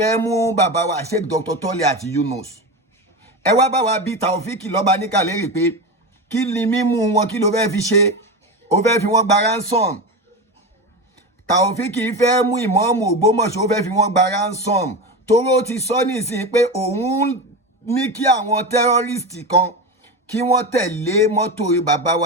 mú bàbá wa Sheikh Dr. Toliat Yunus ẹ wá bá wa bí Taofeek Lobanika lérè pé kí ni mímú wọn kí ló fẹ́ fi ṣe ó fẹ́ fi wọ́n gba ransom. Taofeek fẹ́ mú Imam Ogbomosho ó fẹ́ fi wọ́n gba ransom toró ti sọ nísìnyí pé òun ní kí àwọn terrorist kan kí wọ́n tẹ̀lé mọ́tò bàbá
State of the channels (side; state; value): both; normal; correlation 0.21